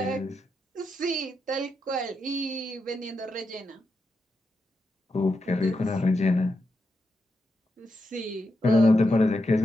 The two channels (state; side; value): normal; both; correlation 0.86